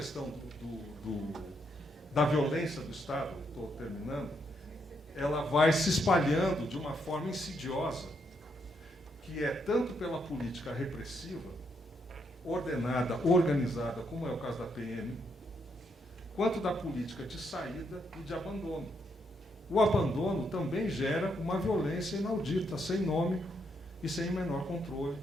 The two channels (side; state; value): both; normal; correlation 0.77